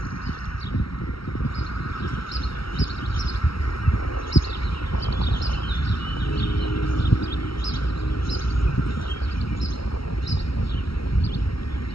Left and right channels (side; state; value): right; late; 0.75 ms